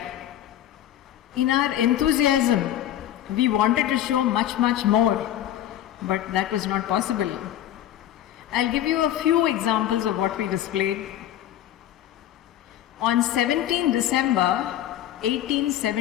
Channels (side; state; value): right; quieter; 12.1 dB